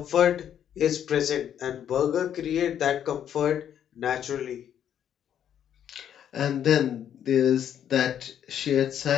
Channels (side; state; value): right; quieter; 9.7 dB